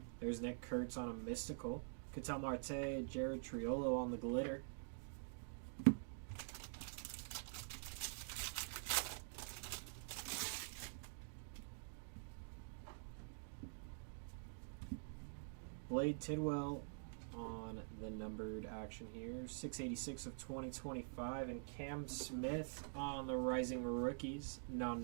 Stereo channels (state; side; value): silent; left; digital silence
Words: There's Nick Kurtz on a mystical. Ketel Marte, Jared Triolo on the glitter. Blade Tidwell on the numbered action here. 686 of 2025. And Cam Smith on the Rising Rookies.